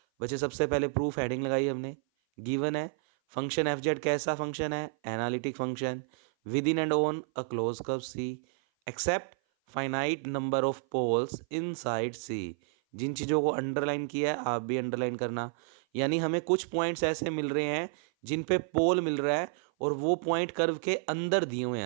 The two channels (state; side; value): silent; left; 56 dB below the other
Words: बच्चे सबसे पहले प्रूफ हेडिंग लगाई हमने, गिवन है फंक्शन एफ जेड कैसा फंक्शन है, analytic function, within and on a close curve C, except finite number of poles inside C. जिन चीज़ों को अंडरलाइन किया है आप भी अंडरलाइन करना, यानी हमें कुछ पॉइंट्स ऐसे मिल रहे हैं जिन पे पोल मिल रहा है और वो पॉइंट कर्व के अंदर दिए हुए